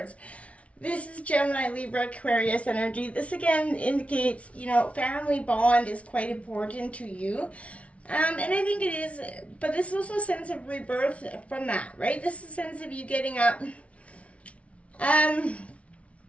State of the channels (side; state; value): right; late; 0.063 ms